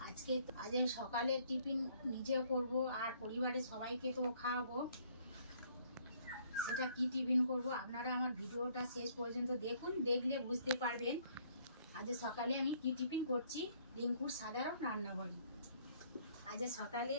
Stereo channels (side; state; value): both; inverted; correlation -0.63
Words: আজ সকালে টিফিন নিজেও করব আর পরিবারের সবাইকে তো খাওয়াবো। সেটা কি টিফিন করব আপনারা আমার ভিডিওটা শেষ পর্যন্ত দেখুন, দেখলে বুঝতে পারবেন আজ সকালে আমি কি টিফিন করছি। রিঙ্কুর সাধারণ রান্নাঘরে আজ সকালে